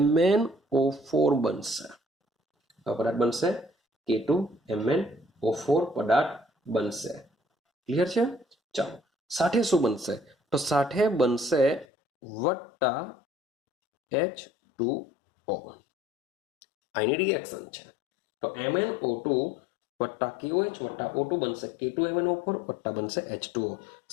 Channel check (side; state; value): right; drops out; at 11.9 s